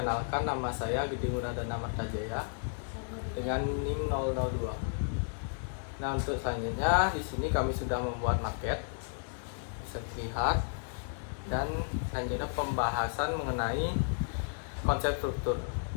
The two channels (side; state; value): right; silent; digital silence